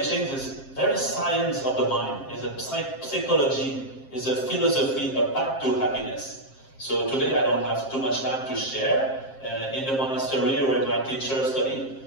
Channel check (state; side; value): late; right; 7.5 ms